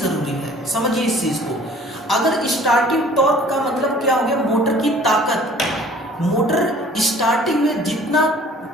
है, समझिए इस चीज को। अगर स्टार्टिंग टॉर्क का मतलब क्या हो गया? मोटर की ताकत। मोटर स्टार्टिंग में जितना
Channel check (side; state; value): both; normal; correlation 0.51